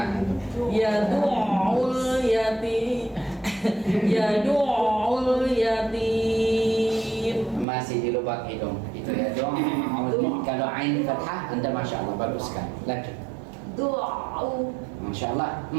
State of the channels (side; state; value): left; drops out; at 7.7 s